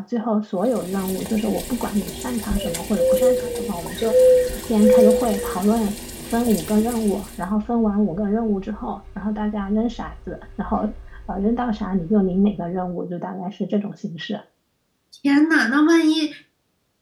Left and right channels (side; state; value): both; identical; correlation 1.00